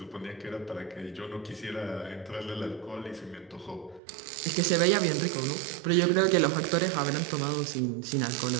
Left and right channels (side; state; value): left; drops out; at 4.0 s